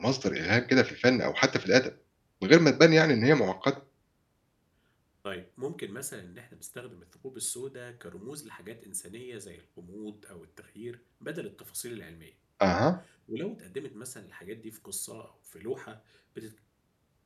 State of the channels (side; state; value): both; identical; correlation 1.00